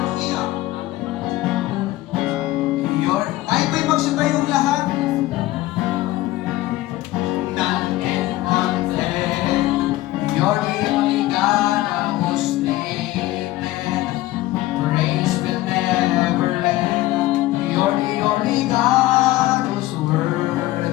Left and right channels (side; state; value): right; quieter; 16.8 dB